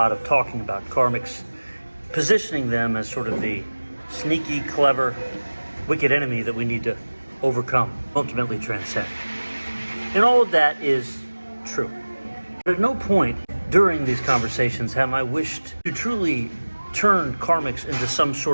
of talking about karmics, positioning them as sort of the sneaky, clever, wicked enemy that we need to overcome, ultimately transcend. And all of that is true. But at no point during these conversations have I wished to truly turn karmics into some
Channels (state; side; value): inverted; both; correlation -1.00